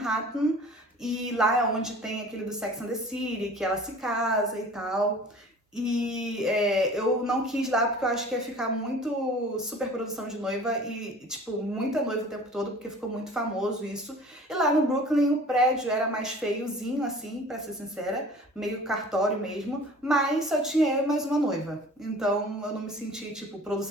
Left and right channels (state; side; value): normal; both; correlation 0.45